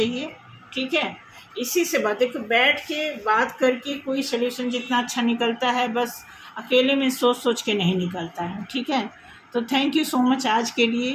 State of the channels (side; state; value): both; identical; correlation 1.00